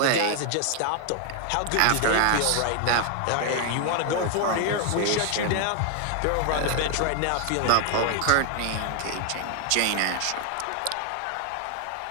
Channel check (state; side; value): different; both; correlation 0.00